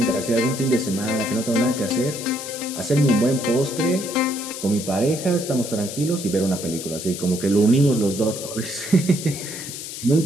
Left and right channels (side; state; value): left; noise; hiss, 9 dB below the sound